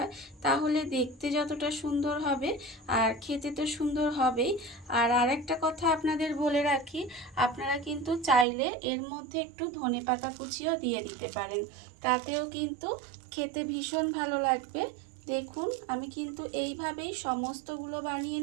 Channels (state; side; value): drops out; left; at 8.5 s